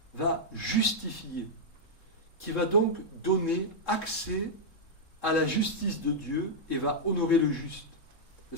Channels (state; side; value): late; right; 3.7 ms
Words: va justifier, qui va donc donner accès à la justice de Dieu et va honorer le juste. Et